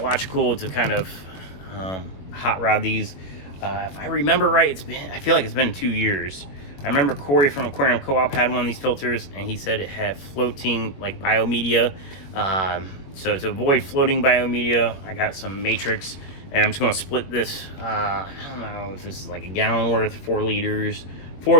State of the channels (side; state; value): right; late; 21 ms